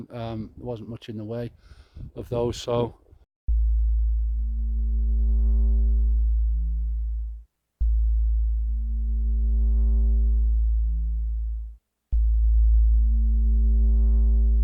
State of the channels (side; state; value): both; identical; correlation 1.00